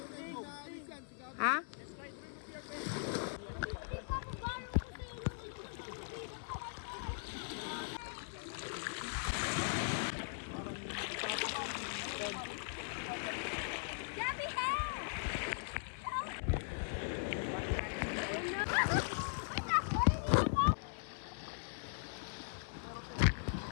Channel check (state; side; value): silent; right; 51 dB below the other